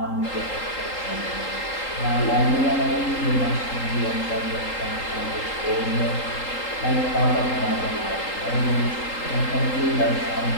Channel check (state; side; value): late; right; 3.8 ms